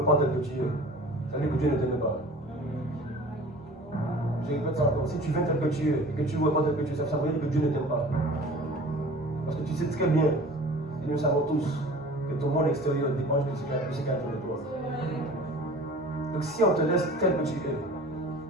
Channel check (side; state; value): both; normal; correlation 0.43